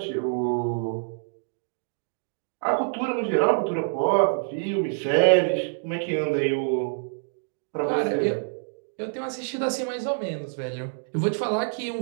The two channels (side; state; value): left; silent; digital silence